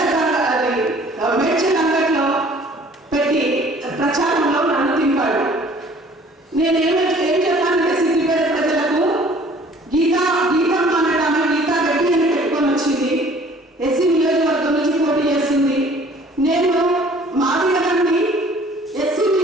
మేడ్చల్ అంగడిలో పెట్టి ప్రచారంలో నన్ను తింపాడు. నేనేం చెప్పానంటే సిద్దిపేట ప్రజలకు గీతమ్మ అనడామె గీతా రెడ్డి అని పెట్టుకొని వచ్చింది. ఎస్సీ నియోజకవర్గం నుంచి పోటీ చేస్తుంది. నేను మాదిగని ఎస్సీ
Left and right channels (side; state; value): both; normal; correlation 0.53